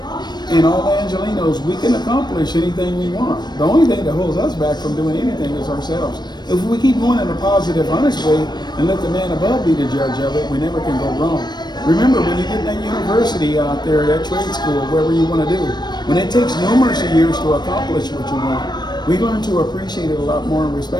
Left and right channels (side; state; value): right; late; 0.21 ms